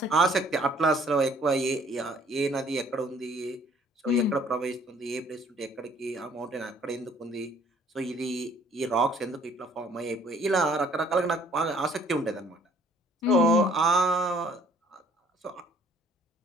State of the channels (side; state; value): both; normal; correlation 0.58